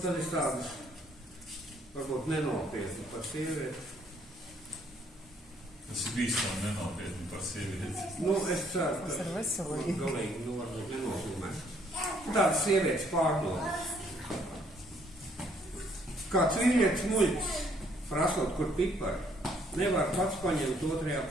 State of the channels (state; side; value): normal; both; correlation 0.66